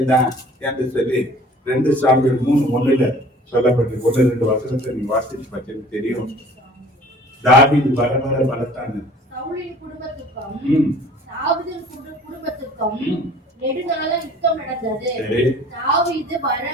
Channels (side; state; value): both; normal; correlation 0.49